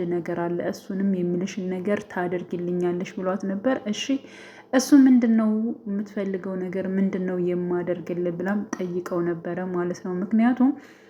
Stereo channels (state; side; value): identical; both; correlation 1.00